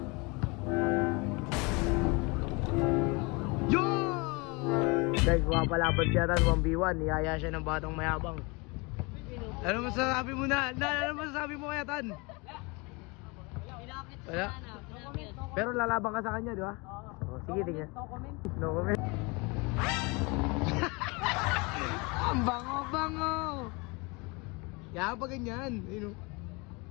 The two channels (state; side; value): quieter; right; 27.9 dB